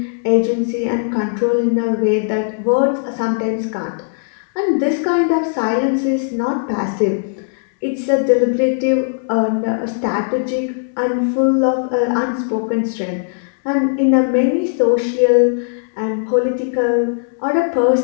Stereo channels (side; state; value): right; silent; digital silence